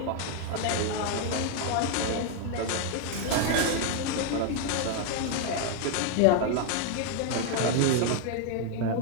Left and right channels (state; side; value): different; both; correlation 0.00